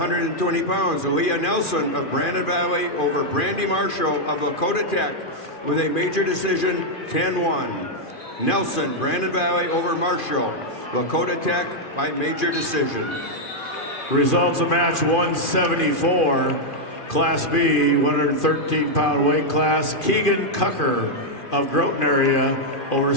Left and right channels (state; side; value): late; right; 2.4 ms